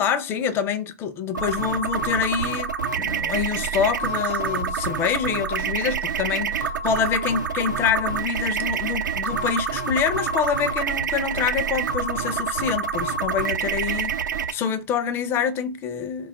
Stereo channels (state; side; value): normal; both; correlation 0.05